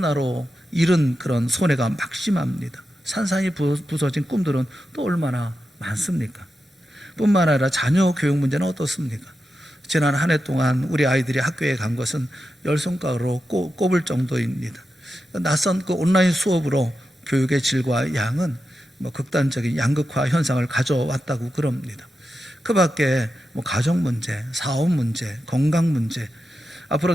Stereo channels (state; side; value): normal; both; correlation 0.89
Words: 잃은 그런 손해가 막심합니다. 산산이 부서진 꿈들은 또 얼마나 많습니까? 뿐만 아니라 자녀 교육 문제는 어떻습니까? 지난 한 해 동안 우리 아이들이 학교에 간 것은 열 손가락으로 꼽을 정도입니다. 낯선 그 온라인 수업으로 교육의 질과 양은 극단적인 양극화 현상을 가져왔다고 그럽니다. 그 밖에 가정 문제, 사업 문제, 건강 문제, 앞으로